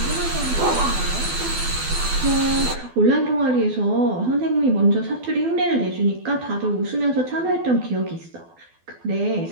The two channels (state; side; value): late; left; 12 ms